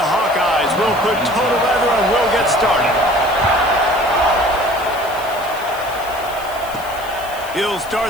Hawkeyes will put total leather and will get started. He'll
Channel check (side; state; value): left; noise; hiss, 17 dB below the sound